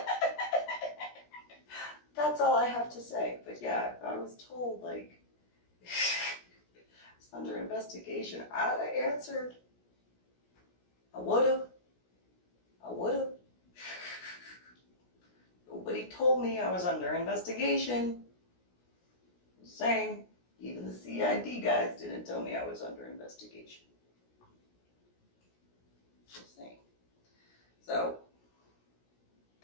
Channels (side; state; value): right; late; 17 ms